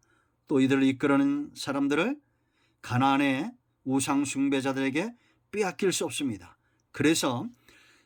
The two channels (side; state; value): both; identical; correlation 1.00